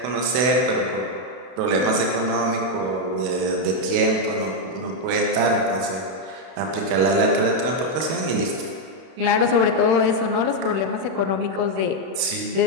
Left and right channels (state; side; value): late; left; 31 ms